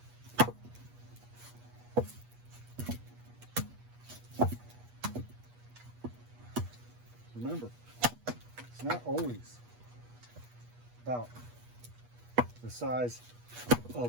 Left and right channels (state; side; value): late; left; 8.3 ms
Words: Remember, it's not always about the size